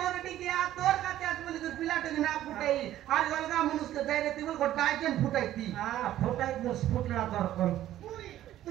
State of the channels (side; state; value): left; quieter; 13.0 dB